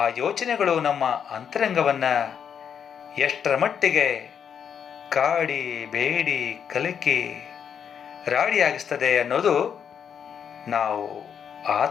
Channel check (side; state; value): right; quieter; 7.7 dB